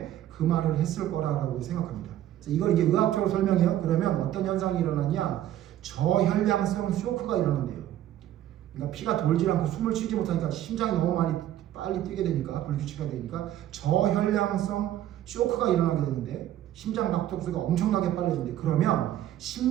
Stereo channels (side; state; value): left; quieter; 12.4 dB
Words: 그 말을 했을 거라고 생각합니다. 그래서 이걸 이제 의학적으로 설명해요. 그러면 어떤 현상이 일어나냐? 저혈량성 쇼크가 일어난대요. 그러니까 피가 돌지 않고 숨을 쉬지 못하니까 심장이 너무 빨리 뛰게 되니까 불규칙하게 되니까 저혈량성 쇼크가 일어나게 되는데 심장 박동수가 엄청나게 빨라진대. 그러면